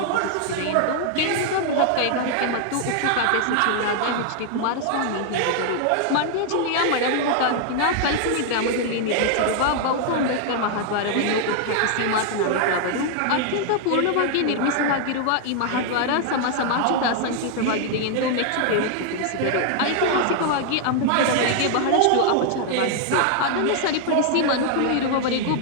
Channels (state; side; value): different; both; correlation 0.00